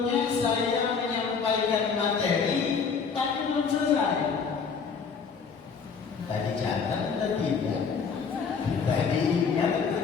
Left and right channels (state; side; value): quieter; right; 5.8 dB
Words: saya menyampaikan materi, tapi belum selesai. Tadi catat atau tidak? Tadi ingat atau